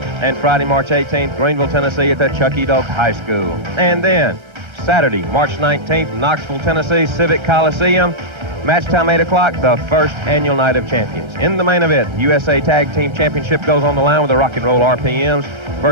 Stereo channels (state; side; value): late; left; 1.3 ms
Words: And Friday, March 18th, Greenville, Tennessee at the Chucky Doak High School. And then Saturday, March 19th, Knoxville, Tennessee, Civic Coliseum. Match time 8 o'clock, the first annual Night of Champions. In the main event, USA Tag Team Championship goes on the line with the Rock and Roll RPMs